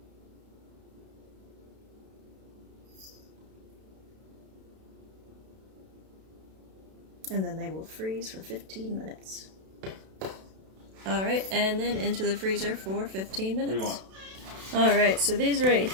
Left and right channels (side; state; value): left; late; 32 ms